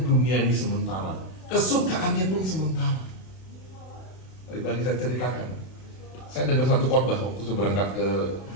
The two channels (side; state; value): right; late; 32 ms